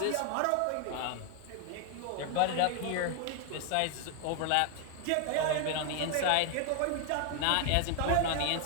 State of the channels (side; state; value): both; different; correlation 0.00